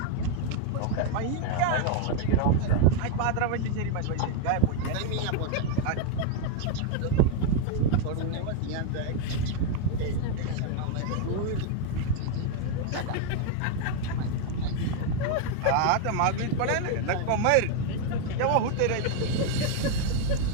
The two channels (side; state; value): both; different; correlation 0.00